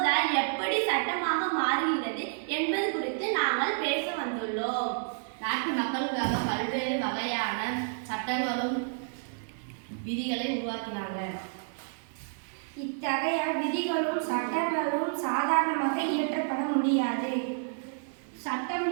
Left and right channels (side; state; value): left; silent; digital silence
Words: எப்படி சட்டமாக மாறுகிறது என்பது குறித்து நாங்கள் பேச வந்துள்ளோம். நாட்டு மக்களுக்காக பல்வேறு வகையான சட்டங்களும் விதிகளை உருவாக்கினாங்க. இத்தகைய விதிகளும் சட்டங்களும் சாதாரணமாக இயற்றப்பட முடியாது. சட்டம்